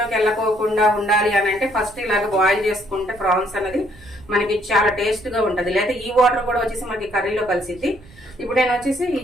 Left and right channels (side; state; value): right; noise; rumble, 23 dB below the sound